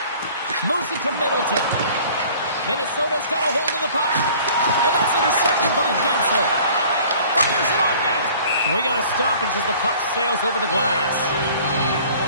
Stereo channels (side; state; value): both; inverted; correlation -0.50